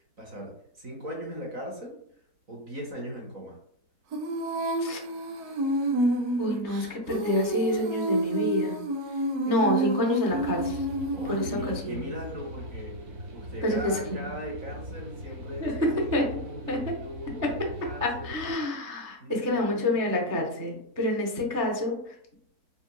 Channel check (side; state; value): left; late; 3.3 ms